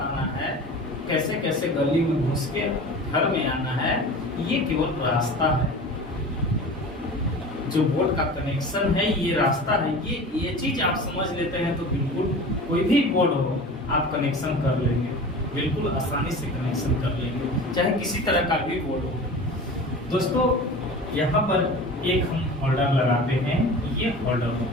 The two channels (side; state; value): both; normal; correlation 0.37